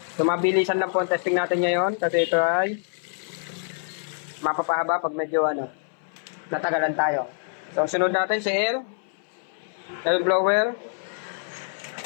So mabilisan lang po ang testing natin ngayon kasi ito ay mapapahaba pag medyo natagalan tayo. So sunod natin si air blower.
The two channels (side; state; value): right; silent; 59 dB below the other